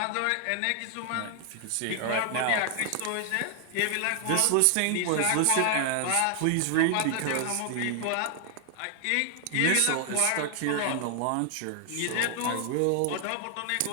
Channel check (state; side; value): different; both; correlation 0.00